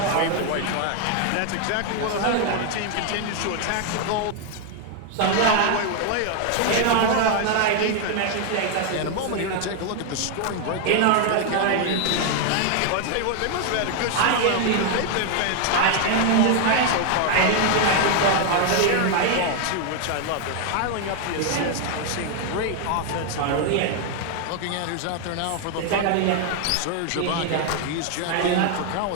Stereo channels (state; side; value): different; both; correlation 0.00